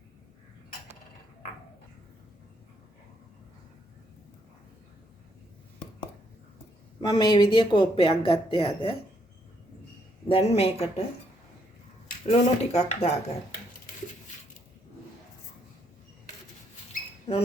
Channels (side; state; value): both; normal; correlation 0.73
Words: මම මේ විදිය කෝප්පයක් ගත්තේ අද. දැන් මේකට ලුණු ටිකක් දාගන්න.